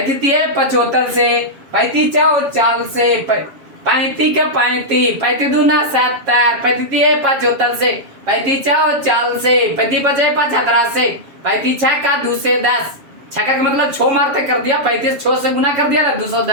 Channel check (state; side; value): late; left; 7.3 ms